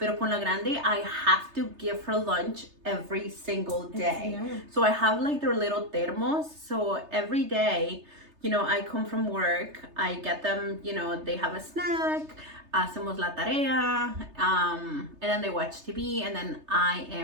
con la grande, I have to give her lunch every single day. Yeah. So I have like their little thermos. So every day, I come from work, I get them, they have a snack, hacemos la tarea, and then they watch TV, and then I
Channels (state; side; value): late; left; 3.3 ms